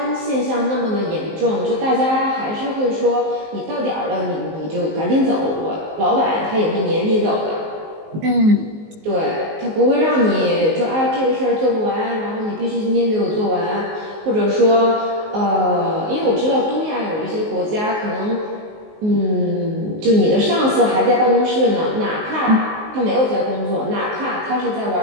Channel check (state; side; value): late; left; 19 ms